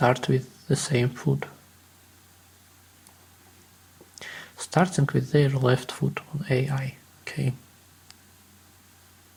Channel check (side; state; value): both; identical; correlation 1.00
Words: with the same foot? starting with their left foot on AI. Okay.